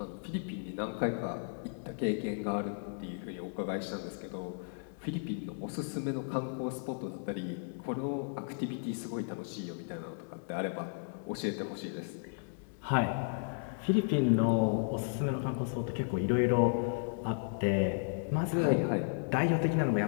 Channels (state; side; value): silent; right; digital silence